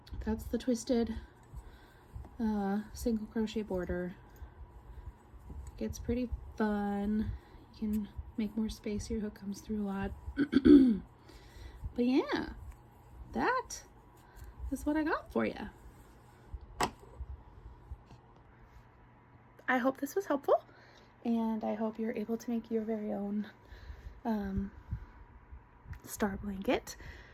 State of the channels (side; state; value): both; identical; correlation 1.00